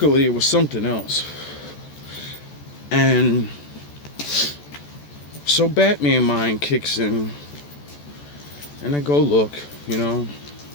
it was something else. And so Batman mind kicks in, and I go look, and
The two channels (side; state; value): right; late; 14 ms